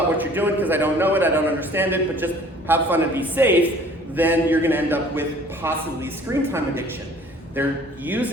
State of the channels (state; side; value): normal; both; correlation 0.52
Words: what you're doing because I don't know it, I don't understand it, but just have fun and be safe. Then you're going to end up with possibly screen time addiction. They're